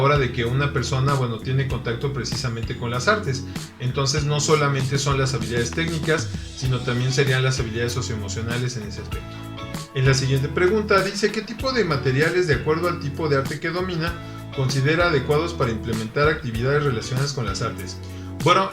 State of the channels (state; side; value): identical; both; correlation 1.00